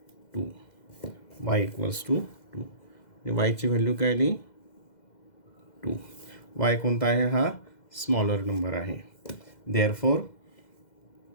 2. Y equals to 2. वायची व्हॅल्यू काय आली, 2. वाय कोणता आहे, हा स्मॉलर नंबर आहे. Therefore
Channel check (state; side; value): late; right; 2.0 ms